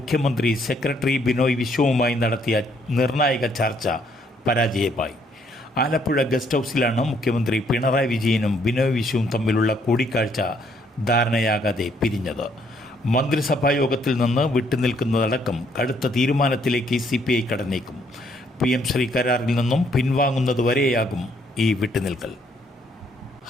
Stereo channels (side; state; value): both; normal; correlation 0.68